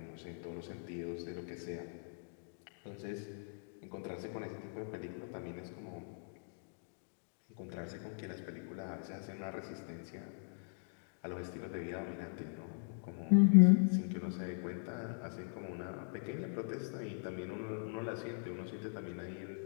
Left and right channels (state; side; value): silent; right; digital silence